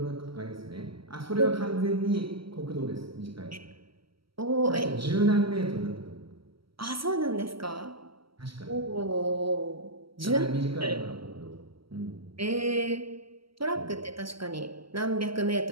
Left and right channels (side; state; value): left; late; 0.75 ms